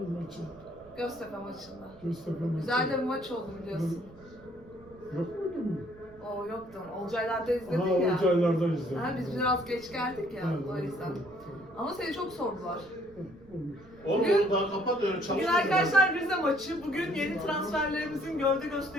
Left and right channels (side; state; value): right; noise; rumble, 24 dB below the sound